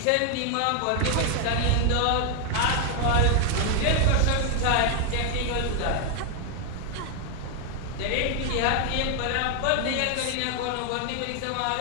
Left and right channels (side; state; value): both; different; correlation 0.00